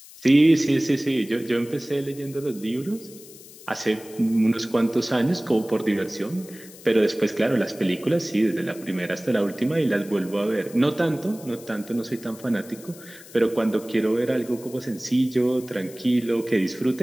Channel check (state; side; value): noise; left; hiss, 19 dB below the sound